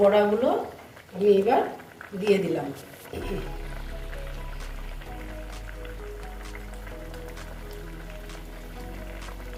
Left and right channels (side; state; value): both; identical; correlation 1.00